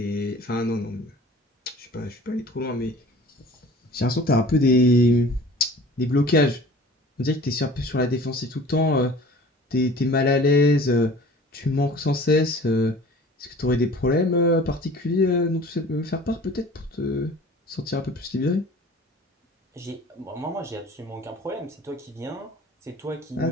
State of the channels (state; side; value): normal; both; correlation 0.45